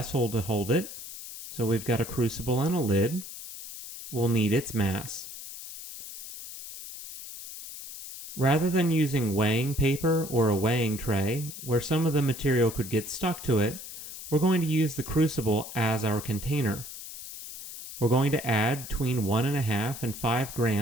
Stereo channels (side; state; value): left; noise; hiss, 11 dB below the sound